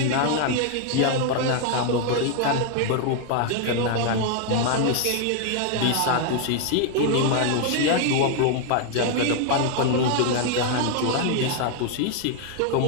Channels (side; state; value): both; different; correlation 0.00